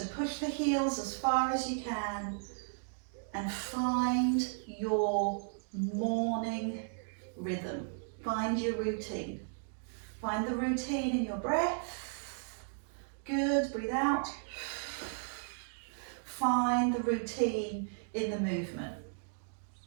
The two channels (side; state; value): left; silent; digital silence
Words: push the heels as far as you can and find your morning rhythm. Find your routine. Find the routine in your breath, Good, breathe out. Find the routine in the movement.